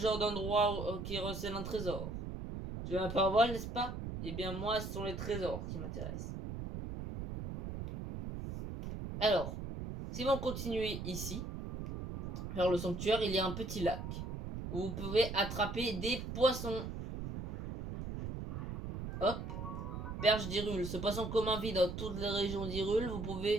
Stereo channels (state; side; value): noise; right; rumble, 6 dB below the sound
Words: d'endroit qui recèle un trésor. Tu as un parole, n'est-ce pas? Eh bien moi, ce sont les trésors qui m'intéressent. Alors, si vous continuez ici, vers le sanctuaire, il y a un petit lac où vous pouvez attraper des poissons. Hop, perche d'Hyrule. Ce poisson commun vit dans toutes les régions d'Hyrule. Vous